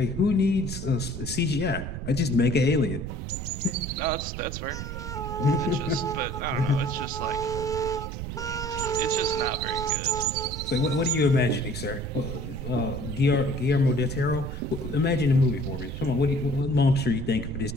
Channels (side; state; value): right; noise; rumble, 7 dB below the sound